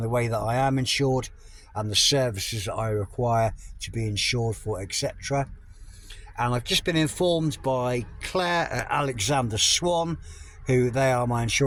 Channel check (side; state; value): both; identical; correlation 1.00